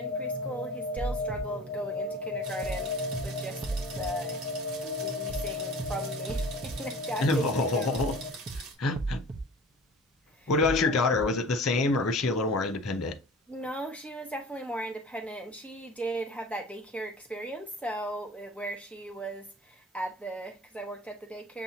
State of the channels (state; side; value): normal; both; correlation 0.41